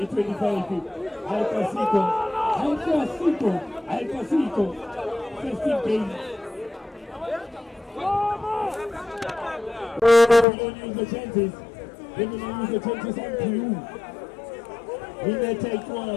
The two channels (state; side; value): drops out; right; at 10.5 s